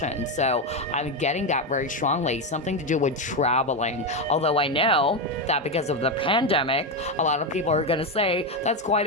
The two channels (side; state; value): both; normal; correlation 0.10